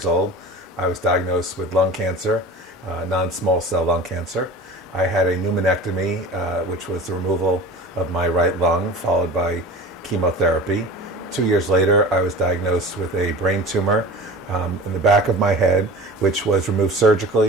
old, I was diagnosed with lung cancer, non-small cell lung cancer. I had a pneumonectomy, which was the removal of my right lung, followed by chemotherapy. 2 years later, I was diagnosed with a brain tumor in the back of my head, which was removed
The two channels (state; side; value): normal; both; correlation 0.37